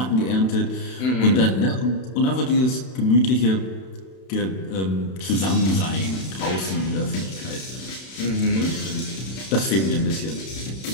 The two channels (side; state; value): right; late; 31 ms